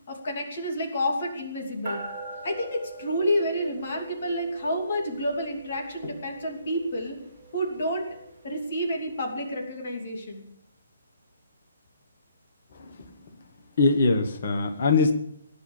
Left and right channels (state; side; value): inverted; both; correlation -0.66